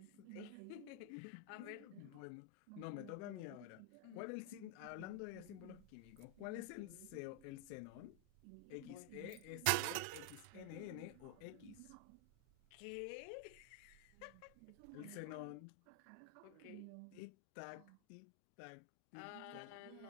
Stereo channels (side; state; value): both; different; correlation 0.00